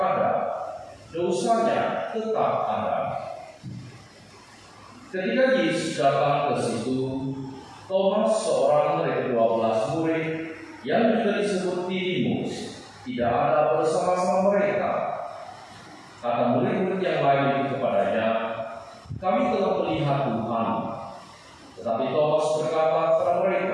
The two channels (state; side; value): identical; both; correlation 1.00